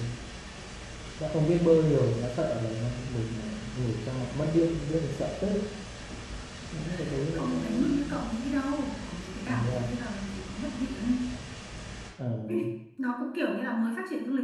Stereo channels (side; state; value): both; identical; correlation 1.00